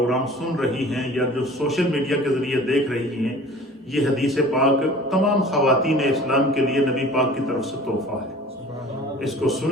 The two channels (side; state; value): both; normal; correlation 0.45